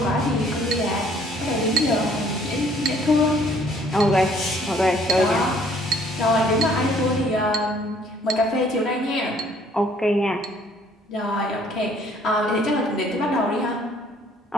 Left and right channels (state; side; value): normal; both; correlation 0.60